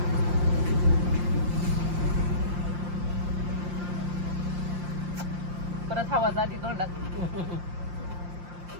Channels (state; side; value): late; left; 5.7 ms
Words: परत हवा जाती तोंडात.